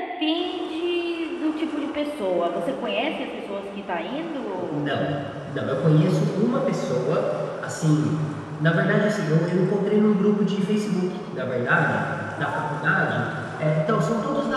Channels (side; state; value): both; identical; correlation 1.00